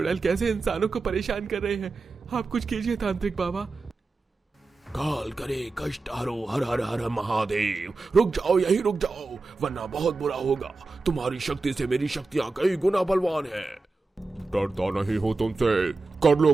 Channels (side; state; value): left; quieter; 3.6 dB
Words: कैसे इंसानों को परेशान कर रहे हैं। आप कुछ कीजिए तांत्रिक बाबा। काल करे कष्ट हरो, हर हर हर महादेव। रुक जाओ, यही रुक जाओ, वरना बहुत बुरा होगा। तुम्हारी शक्ति से मेरी शक्तियां कई गुना बलवान है। डरता नहीं हो तुमसे, कर लो